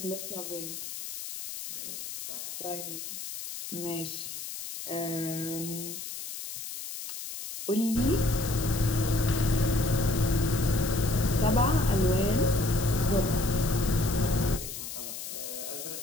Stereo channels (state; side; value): noise; left; hiss, 8 dB below the sound